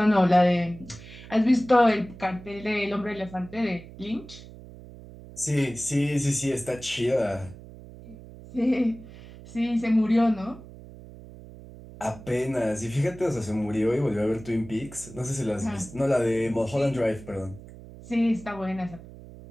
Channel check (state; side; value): noise; right; hum, 17 dB below the sound